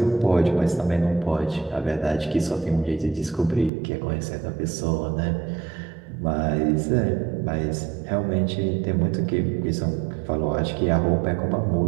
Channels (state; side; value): drops out; left; at 3.7 s